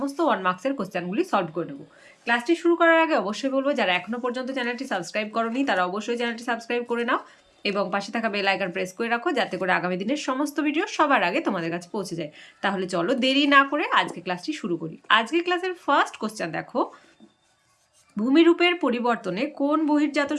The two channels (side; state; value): both; identical; correlation 1.00